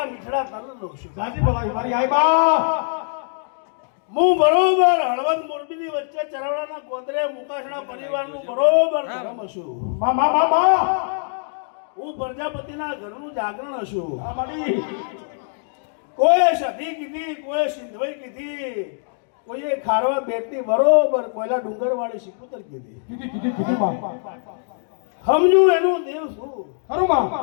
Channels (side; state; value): right; silent; digital silence